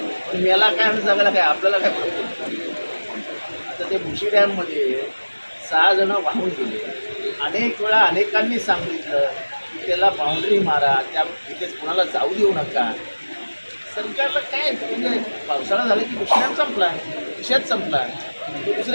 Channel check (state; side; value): inverted; both; correlation -1.00